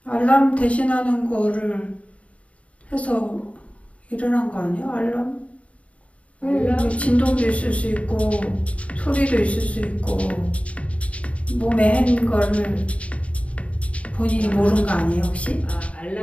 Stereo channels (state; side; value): late; right; 0.065 ms